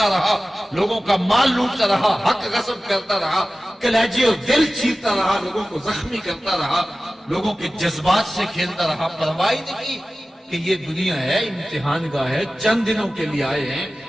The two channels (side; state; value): both; normal; correlation 0.96